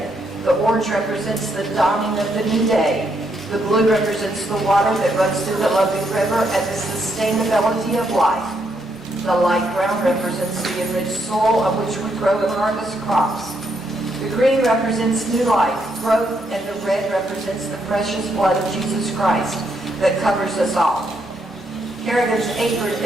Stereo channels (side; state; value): both; normal; correlation 0.76